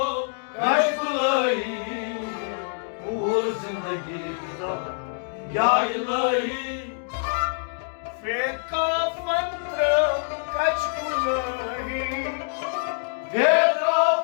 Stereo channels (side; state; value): right; silent; digital silence